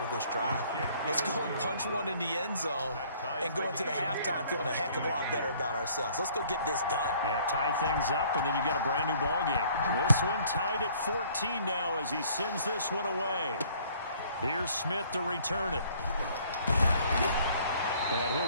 of this drive. Let's go and punch one in the end zone and go into the halftime feeling a heck of a lot better about ourselves. Let's go get this done. Yeah, tie things up, and then you got a brand new ball game. This one tied at 14 now as he sends this one away. Here's Smith to return it. And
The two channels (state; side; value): inverted; both; correlation -0.58